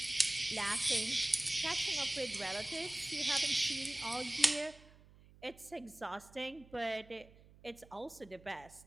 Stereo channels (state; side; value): noise; right; hum, 23 dB below the sound